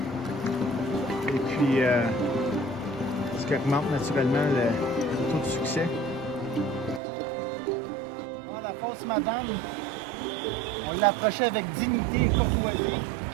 Et puis, ce qui augmente naturellement le taux de succès. La fausse madame, on l'approchait avec dignité et courtoisie.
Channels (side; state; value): left; drops out; at 7.0 s